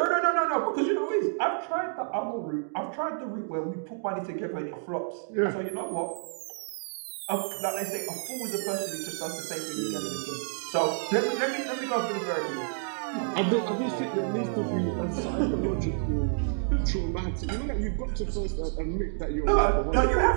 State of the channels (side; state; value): left; silent; digital silence